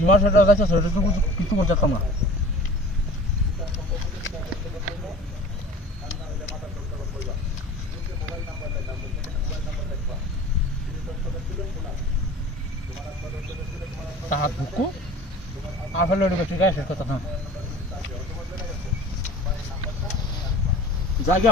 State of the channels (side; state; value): both; normal; correlation 0.43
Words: সেটা যাইতে সেটা তো কিছু করতাম না তাহার বুকু আফেল ঠিক আছে কথা না জায়গা